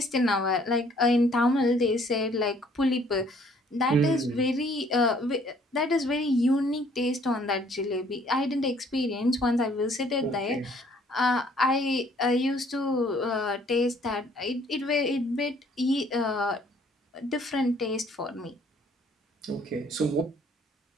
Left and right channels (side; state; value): both; normal; correlation 0.61